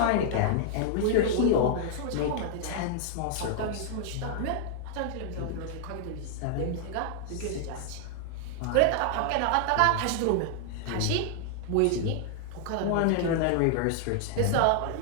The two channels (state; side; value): different; both; correlation 0.00